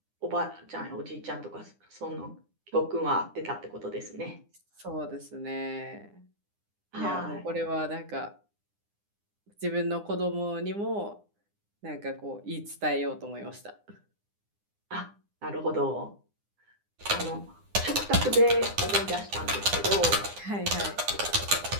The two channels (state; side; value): late; left; 9.8 ms